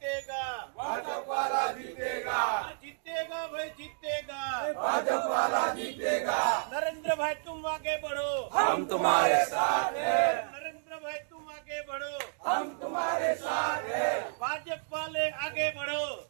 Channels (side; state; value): left; silent; digital silence